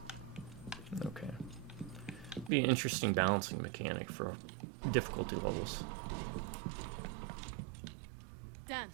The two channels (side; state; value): left; drops out; at 2.5 s